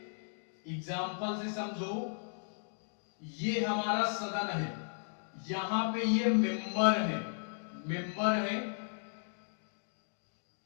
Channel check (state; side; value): silent; right; digital silence